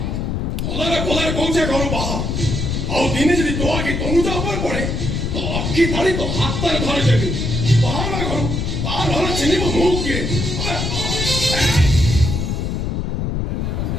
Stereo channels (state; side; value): noise; left; rumble, 1 dB below the sound